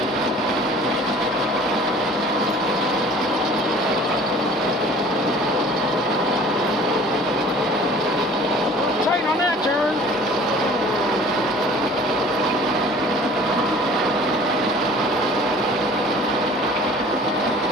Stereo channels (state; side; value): normal; both; correlation 0.48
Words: Tight on that turn.